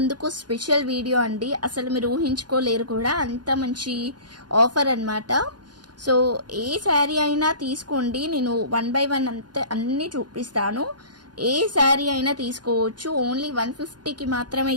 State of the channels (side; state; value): left; late; 0.70 ms